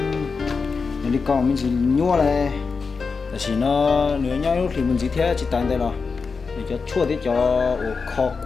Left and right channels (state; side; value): quieter; right; 4.9 dB